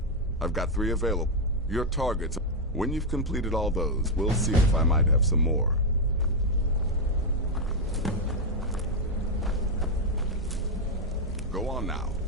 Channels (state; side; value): normal; both; correlation 0.01